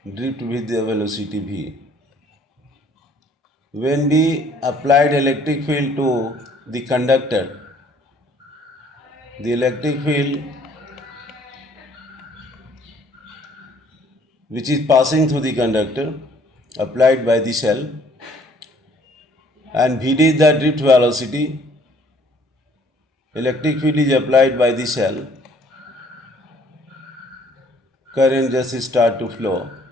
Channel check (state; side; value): normal; both; correlation 0.59